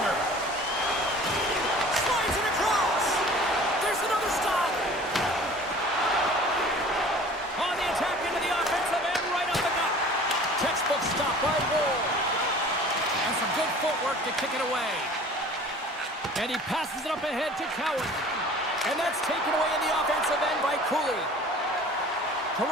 Slides it across. There's another stop. On the attack into the offensive end, right up the gut. Textbook stop by Woll. And some good footwork to kick it away. And he passes it up ahead to Cowan. And that's taken away in the offensive end by Cooley.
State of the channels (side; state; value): both; normal; correlation 0.45